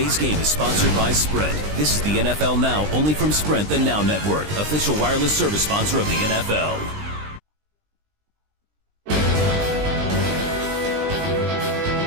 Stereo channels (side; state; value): left; late; 20 ms